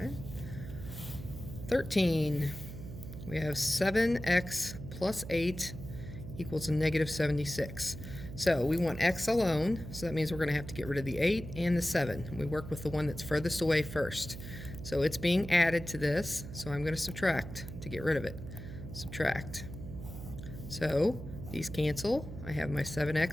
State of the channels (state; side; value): noise; right; hum, 11 dB below the sound